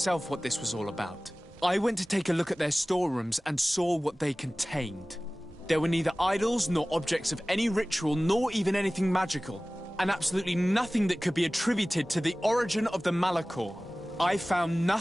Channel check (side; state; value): both; normal; correlation 0.98